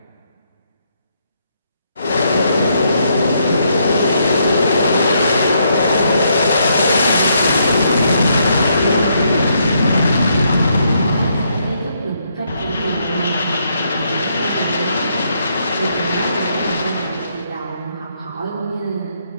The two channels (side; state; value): both; inverted; correlation -0.75